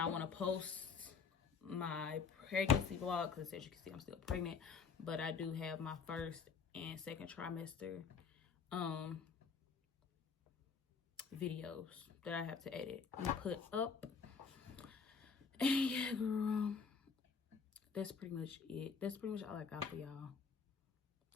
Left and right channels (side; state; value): right; quieter; 5.7 dB